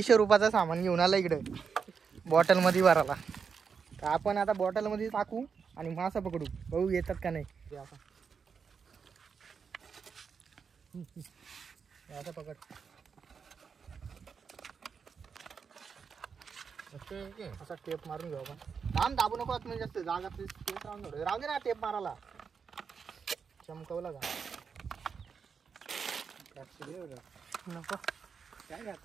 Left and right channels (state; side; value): quieter; left; 6.1 dB